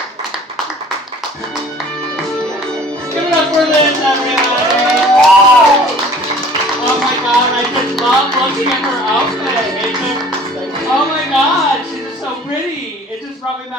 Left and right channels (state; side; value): normal; both; correlation 0.50